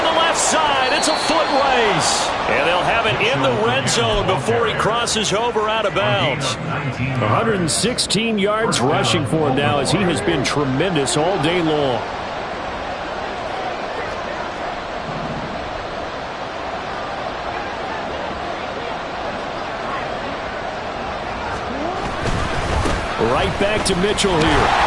the left side. It's a foot race. And they'll have it in the red zone before he crosses over out of bounds. 116 yards rushing for him now as he has been tremendous all day long. Right back to Mitchell here.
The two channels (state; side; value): identical; both; correlation 1.00